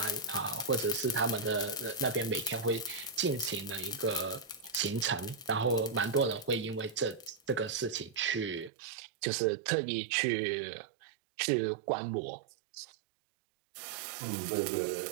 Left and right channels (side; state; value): left; drops out; at 8.7 s